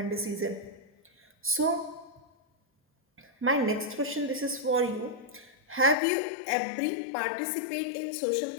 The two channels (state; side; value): drops out; right; at 6.0 s